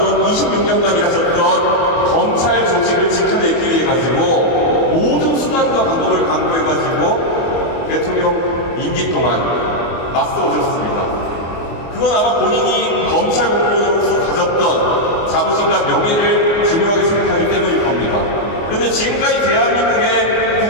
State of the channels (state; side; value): late; right; 24 ms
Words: 26년간 일하셨던 검찰 조직을 지켜내기 위해 가지고 모든 수단과 방법을 강구해가지고 대통령 임기 동안 맞서오셨습니다. 그건 아마 본인이 검찰 공무원으로서 가졌던 자부심과 명예를 중요하게 생각하기 때문일 겁니다. 그런데 지금까지 대한민국의